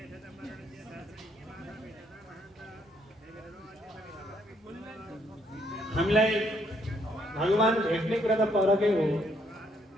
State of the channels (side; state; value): both; normal; correlation 0.70